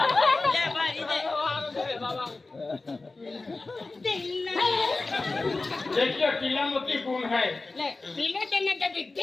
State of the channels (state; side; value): quieter; right; 3.5 dB